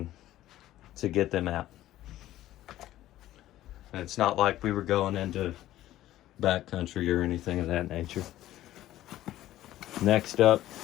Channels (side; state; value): right; quieter; 14.2 dB